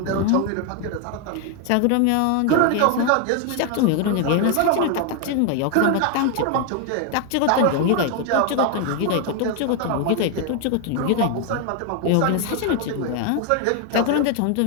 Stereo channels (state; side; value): different; both; correlation 0.01